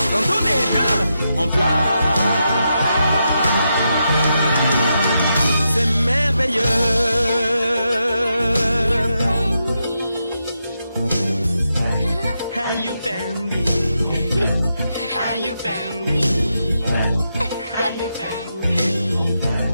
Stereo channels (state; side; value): inverted; both; correlation -0.84